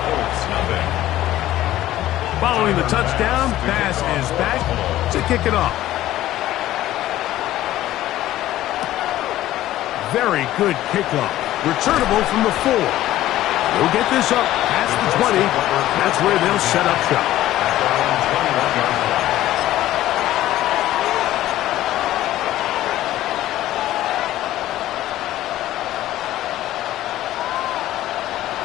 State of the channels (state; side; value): quieter; right; 14.4 dB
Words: Following the touchdown, pass is back to kick it off. Very good kickoff. Returnable from the 4. They'll get this up past the 20. That's where they'll set up shop.